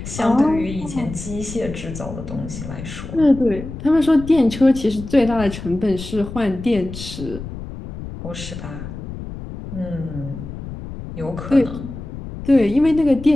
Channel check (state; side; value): noise; left; rumble, 10 dB below the sound